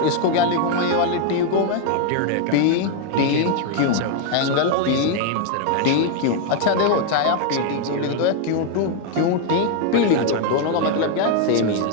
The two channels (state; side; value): different; both; correlation 0.00